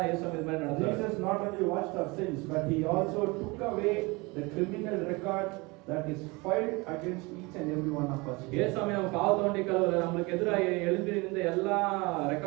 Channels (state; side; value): quieter; left; 25.5 dB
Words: ஏசம் இது மாதிரி நடந்தாரு. Jesus not only washed our sins, but he also took away the criminal record that is filed against each and every one of us. ஏசமே நம்ம பாவத்தை ஒண்டி கழுவுல, நமக்கு எதிராக எழுதி இருந்த எல்லா